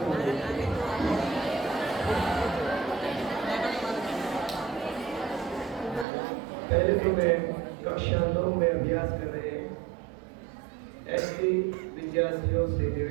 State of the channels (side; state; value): left; drops out; at 6.1 s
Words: पहले तो मैं कक्षा 9 में अभ्यास कर रहे ऐसे विद्यार्थियों से